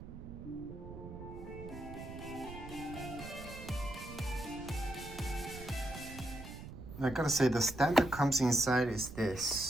I gotta say, the stand that comes inside is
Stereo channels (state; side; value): noise; right; rumble, 12 dB below the sound